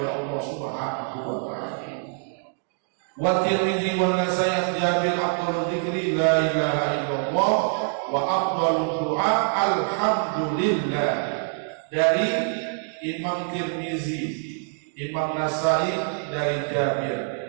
Allah Subhanahu wa taala. Wa Tirmidzi wa Nasai an Jabir afdhalu dzikri la ilaha illallah wa afdhalu du'a alhamdulillah. Dari Imam Tirmidzi, Imam Nasai dari Jabir,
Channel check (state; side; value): silent; left; 62 dB below the other